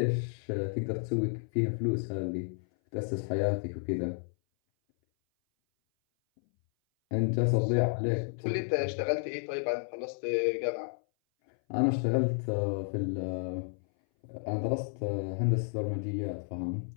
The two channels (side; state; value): right; silent; 57 dB below the other